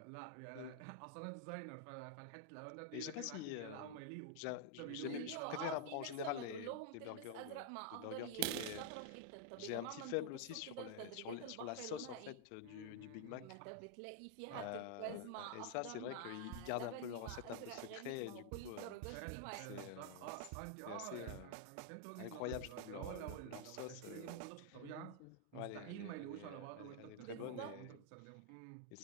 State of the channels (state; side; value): different; both; correlation -0.01